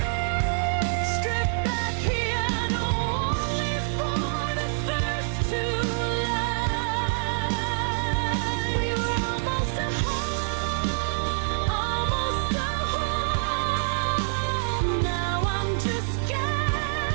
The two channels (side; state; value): left; silent; digital silence